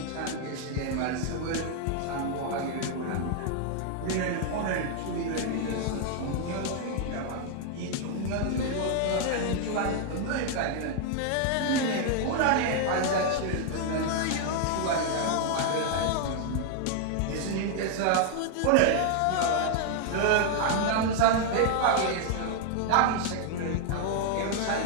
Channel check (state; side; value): different; both; correlation 0.00